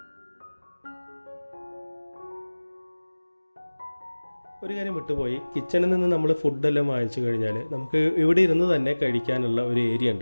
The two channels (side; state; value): both; inverted; correlation -1.00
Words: ഒരു കാര്യം വിട്ടുപോയി, കിച്ചണിൽ നിന്ന് നമ്മൾ ഫുഡെല്ലാം വാങ്ങിച്ചു കഴിഞ്ഞാൽ നമുക്ക് ഇവിടെ ഇരുന്ന് തന്നെ കഴിക്കാനുള്ള ഒരു ഏരിയ